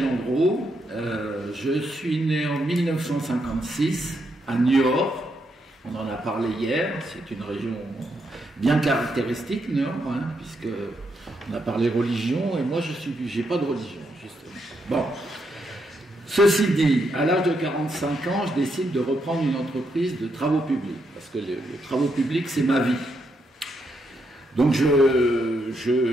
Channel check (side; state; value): both; normal; correlation 0.79